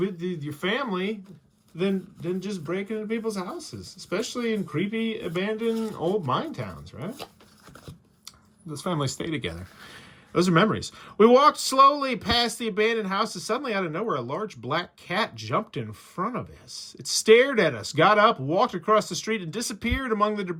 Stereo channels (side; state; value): both; identical; correlation 1.00